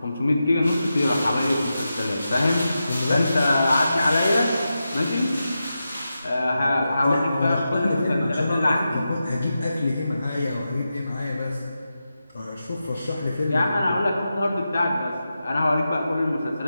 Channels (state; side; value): inverted; both; correlation -0.90